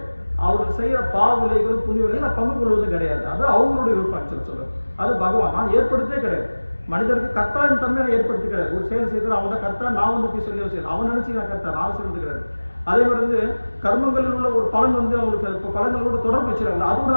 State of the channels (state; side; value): inverted; both; correlation -1.00